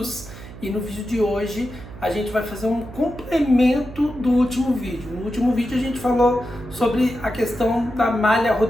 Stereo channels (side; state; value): right; noise; hum, 15 dB below the sound